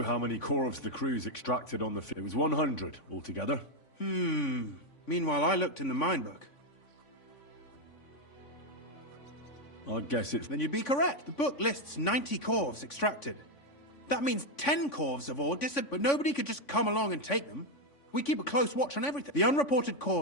how many corvs the crew's extracted on the It was 100 altogether. Meanwhile, I looked in the mine book. I guess it's... Then you'd be correct. The book lists 90 corvs extracted. That means 10 corvs of ore disappeared, but nobody could just come along and take them. We keep a close watch on everything. The unreported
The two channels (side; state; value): right; late; 3.5 ms